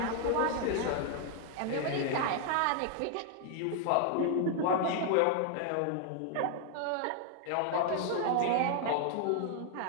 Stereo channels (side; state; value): both; different; correlation 0.00